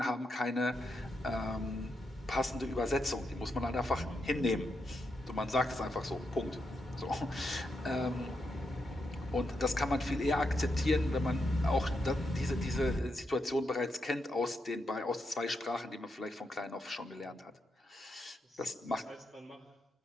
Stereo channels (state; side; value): normal; both; correlation 0.83